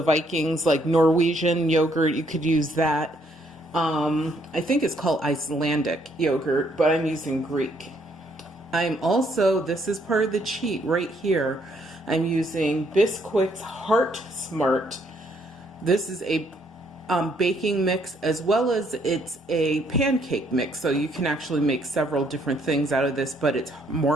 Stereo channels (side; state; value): both; normal; correlation 0.69